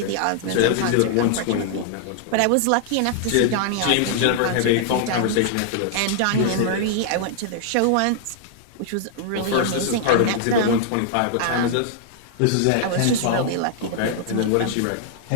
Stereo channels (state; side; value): different; both; correlation -0.01